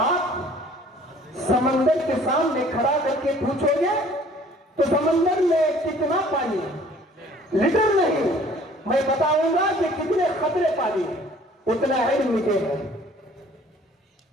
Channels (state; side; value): normal; both; correlation 0.54